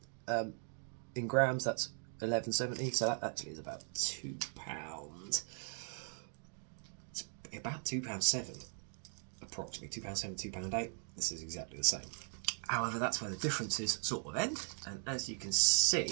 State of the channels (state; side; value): silent; left; 52 dB below the other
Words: In grams, that's 1170, so that actually is about £2. It's about £2.7, approximately £2.7, £2.8. This is exactly the same. However, that's where the differences sort of end, and as you can